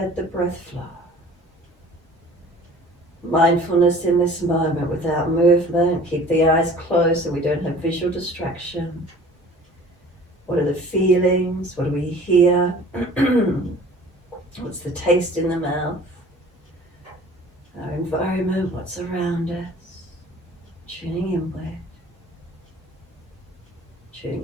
the breath flow. Mindfulness in this moment without movement. Keep the eyes closed so we don't have visual distraction. What are the feelings? What do we hear? What's the taste in the mouth? Our environment, what's around us? Tuning inward.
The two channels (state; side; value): normal; both; correlation 0.47